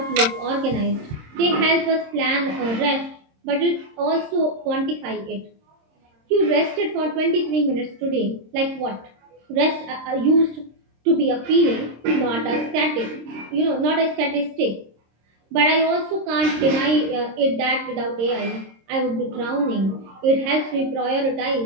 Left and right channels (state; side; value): late; left; 26 ms